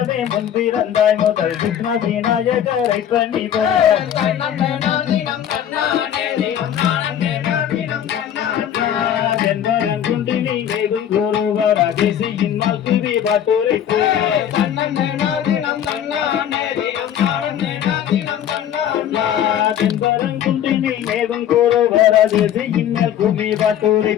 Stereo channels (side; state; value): right; quieter; 10.0 dB